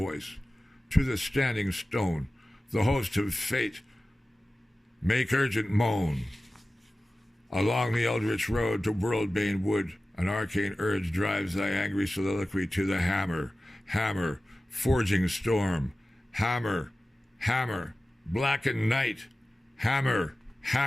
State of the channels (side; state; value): both; normal; correlation 0.96